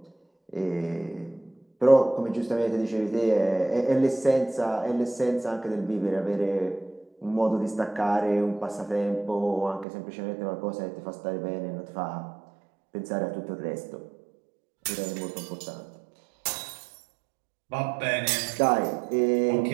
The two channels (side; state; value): left; drops out; at 9.9 s